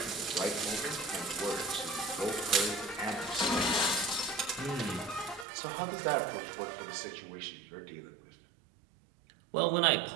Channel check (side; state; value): left; drops out; at 5.5 s